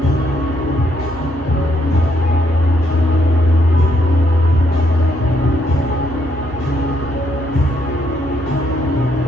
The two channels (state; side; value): normal; both; correlation 0.74